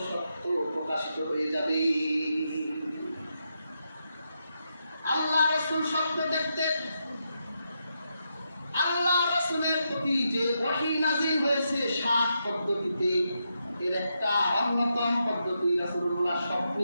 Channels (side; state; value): both; inverted; correlation -0.83